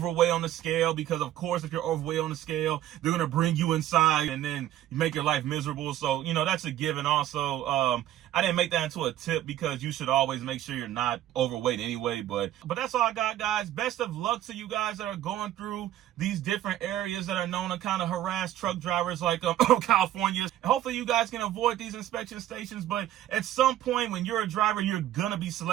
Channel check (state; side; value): quieter; left; 12.9 dB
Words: on the scale, because of course if you're overweight on the scale, they're going to bring you inside and then you make your life miserable. So, you know, that's a given. Also, I didn't make that into a tip because you should always make sure you're not overweight anyway. But that's all I got, guys. Best of luck to you guys that are going through these different areas that are known to kind of harass truck drivers like California. Hopefully you guys can avoid these inspection stations. But at some point when you're a driver, you're going to be